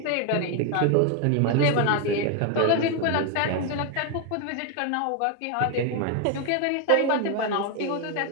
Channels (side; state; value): both; different; correlation 0.01